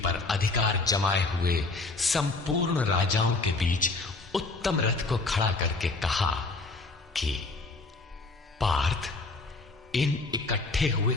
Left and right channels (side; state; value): right; quieter; 3.4 dB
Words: अधिकार जमाए हुए संपूर्ण राजाओं के बीच उत्तम रथ को खड़ा करके कहा कि पार्थ, इन इकट्ठे हुए